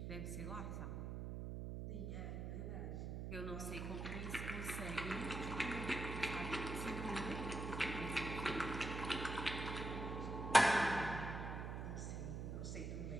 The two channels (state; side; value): noise; right; hum, 4 dB below the sound